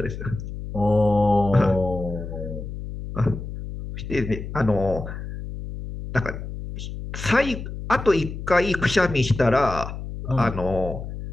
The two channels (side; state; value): left; noise; hum, 8 dB below the sound